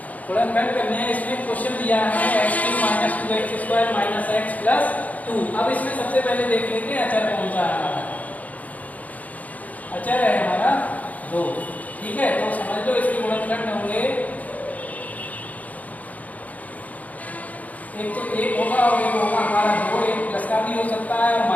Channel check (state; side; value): late; right; 0.074 ms